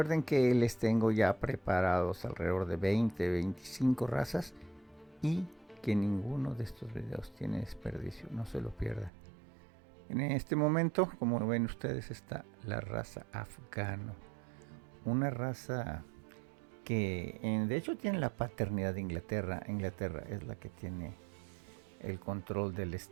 que les tengo ya preparados alrededor de 20-25 razas y que ninguno de estos videos tiene desperdicio, no se lo pierdan. En este momento, como ven ustedes, está la raza afgano, una raza que de hecho tiene la paternidad de Inglaterra. Inglaterra es la que tiene el control del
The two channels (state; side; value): drops out; left; at 9.1 s